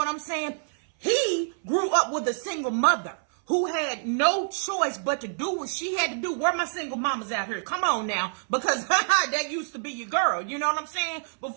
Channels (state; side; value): silent; left; 58 dB below the other